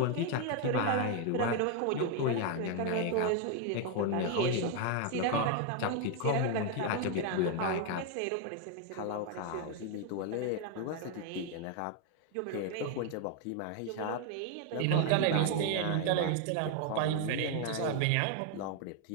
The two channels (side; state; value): both; different; correlation 0.00